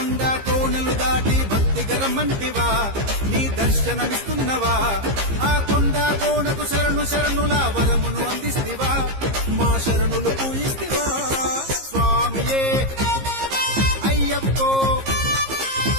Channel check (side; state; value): left; late; 15 ms